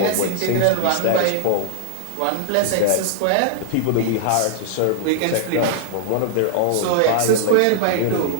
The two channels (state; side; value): different; both; correlation 0.00